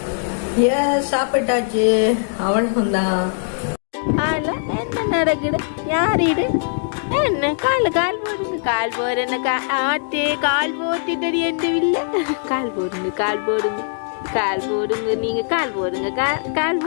சாப்பிட்டாச்சு, அவ்வளவுதான். என்ன நடக்குது? யார் இது? என்ன கால் போடுங்க, கால் போடுறேன்னு ஆட்டே கால் போட்டுட்டு எந்த இல்லை. கால் போடுங்க, கால் போடுங்க, கால் போடுங்க. நீங்க கால் போடுங்க, கால்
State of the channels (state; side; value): silent; right; digital silence